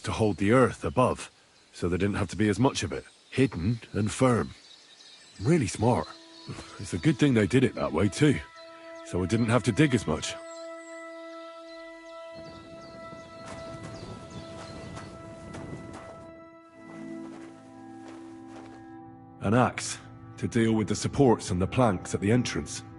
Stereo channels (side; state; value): both; identical; correlation 1.00